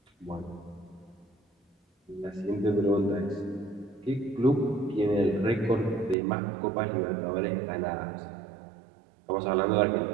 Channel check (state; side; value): drops out; left; at 6.2 s